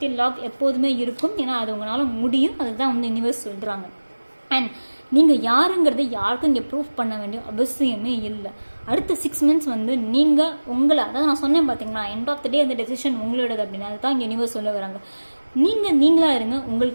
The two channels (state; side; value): inverted; both; correlation -1.00